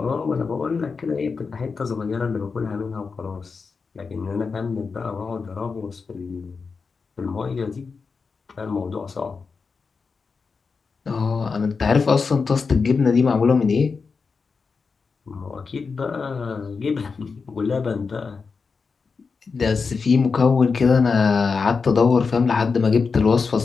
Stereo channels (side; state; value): right; quieter; 5.0 dB